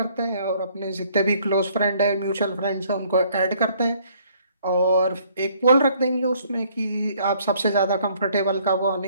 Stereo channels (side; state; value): both; inverted; correlation -0.63